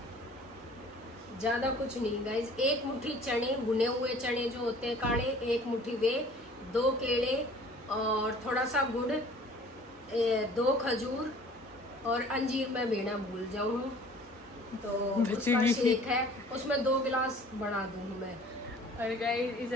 ज्यादा कुछ नहीं गाइस, 1 मुट्ठी चने, भुने हुए चने जो होते हैं काले, 1 मुट्ठी वे, 2 केले और थोड़ा सा गुड़, 2 खजूर और अंजीर मैं लेना भूल जाऊँ तो उसका शेक है, उसमें 2 गिलास बना दूँ मैं। और गाइस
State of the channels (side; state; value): both; normal; correlation 0.50